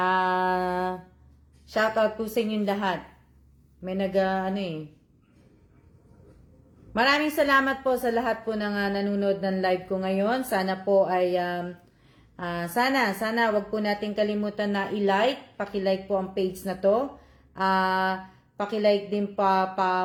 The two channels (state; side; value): identical; both; correlation 1.00